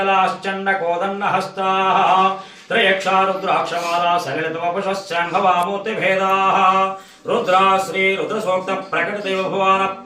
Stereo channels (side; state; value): both; identical; correlation 1.00